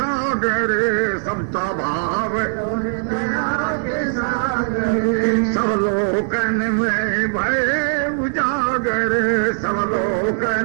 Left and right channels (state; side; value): silent; left; digital silence